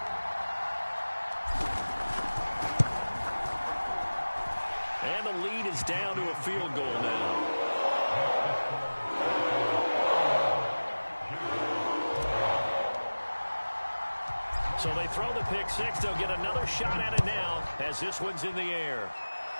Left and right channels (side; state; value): both; inverted; correlation -1.00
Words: And the lead is down to a field goal now. So they throw the pick six. They'll get another shot at it now as this one's in the air.